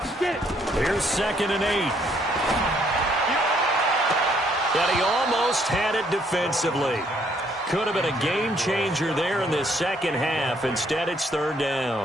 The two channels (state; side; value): normal; both; correlation 0.68